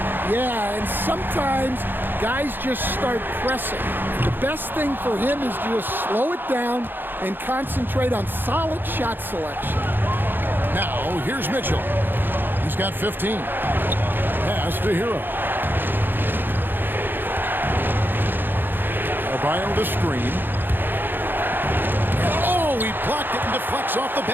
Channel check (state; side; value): late; left; 0.096 ms